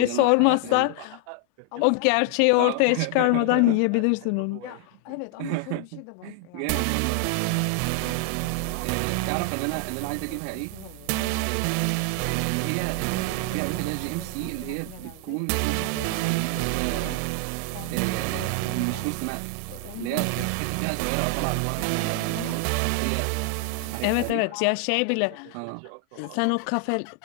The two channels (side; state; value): both; different; correlation 0.00